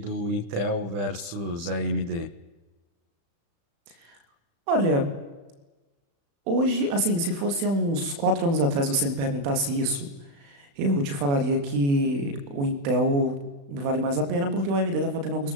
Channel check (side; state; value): left; late; 36 ms